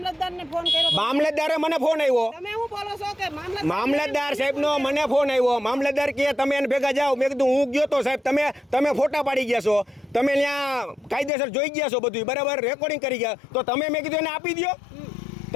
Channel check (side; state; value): right; drops out; at 11.3 s